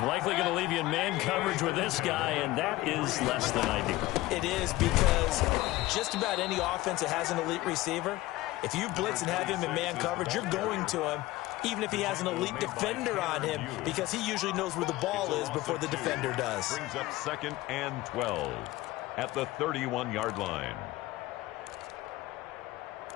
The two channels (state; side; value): quieter; right; 18.1 dB